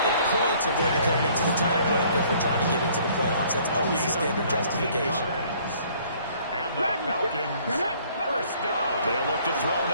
if points are going to come into the tiebreaker if we're trying to get into the playoffs. That's always the standard justification. And the Falcons, 1st down. They'll look to throw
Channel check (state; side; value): inverted; both; correlation -0.59